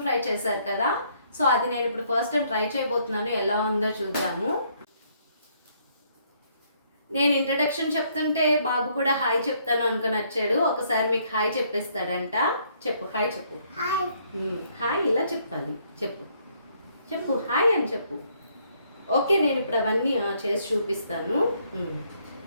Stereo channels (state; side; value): inverted; both; correlation -0.68